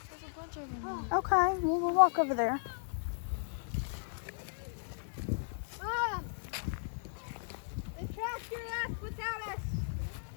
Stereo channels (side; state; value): right; silent; digital silence